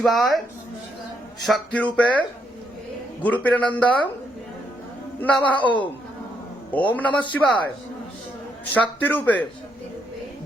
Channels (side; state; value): both; normal; correlation 0.75